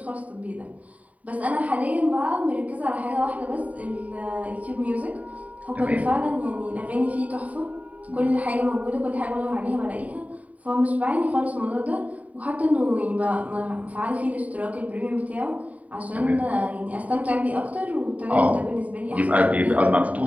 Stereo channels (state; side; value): late; left; 0.069 ms